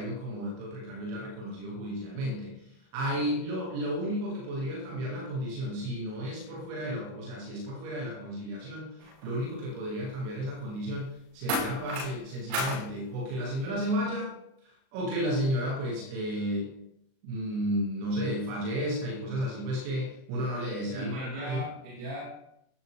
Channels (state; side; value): late; left; 38 ms